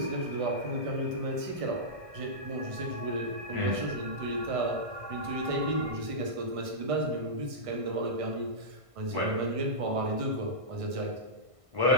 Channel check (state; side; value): late; left; 1.5 ms